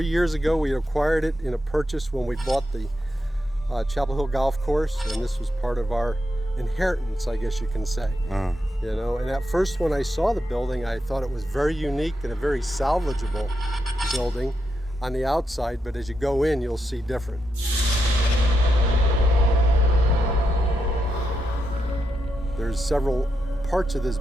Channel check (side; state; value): both; normal; correlation 0.85